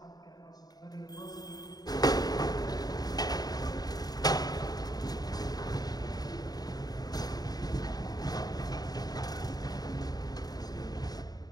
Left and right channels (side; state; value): right; late; 0.19 ms